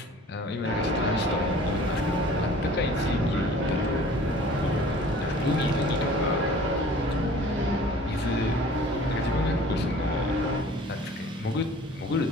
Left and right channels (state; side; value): normal; both; correlation 0.48